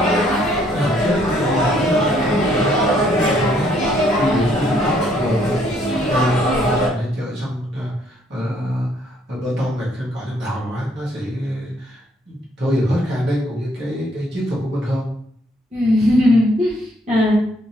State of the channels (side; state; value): both; normal; correlation 0.67